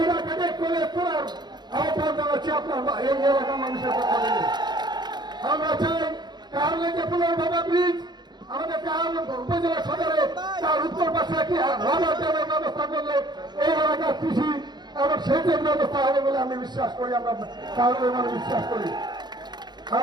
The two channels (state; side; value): late; left; 0.21 ms